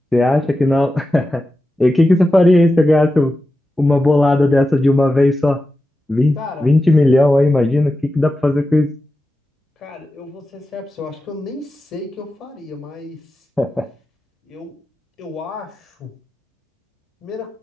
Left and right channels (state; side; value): normal; both; correlation 0.92